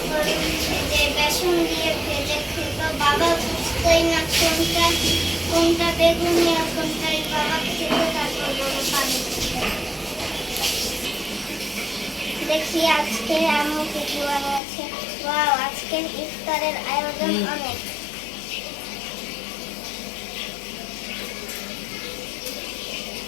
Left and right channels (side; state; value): right; drops out; at 14.6 s